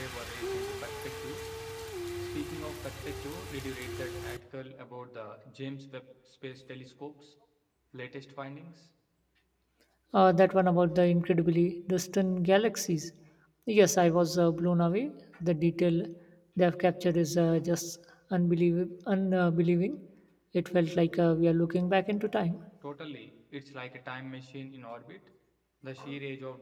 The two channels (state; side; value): identical; both; correlation 1.00